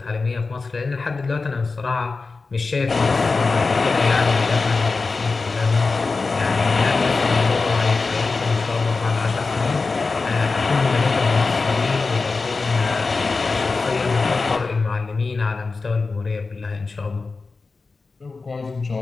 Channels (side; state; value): right; quieter; 4.1 dB